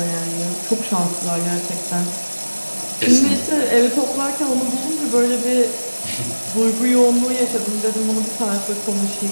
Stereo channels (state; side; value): inverted; both; correlation -1.00